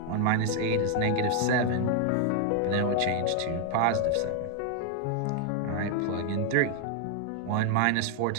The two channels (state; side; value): different; both; correlation 0.00